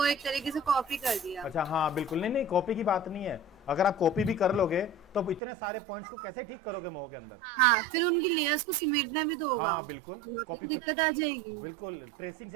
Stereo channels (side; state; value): left; drops out; at 5.4 s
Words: एक तरीके से कॉपी कर दिया। अच्छा हाँ बिल्कुल, नहीं नहीं कॉपी की बात नहीं है। अगर आप कॉपी भी कर लोगे तो इतने सारे पॉइंट्स को कैसे ठीक करोगे मोह के अंदर? हाँ, फिर उनकी लेयर्स को सिमेटना भी तो होगा। हाँ बिल्कुल, कॉपी दिक्कत आ जाएगी। बिल्कुल ट्रेसिंग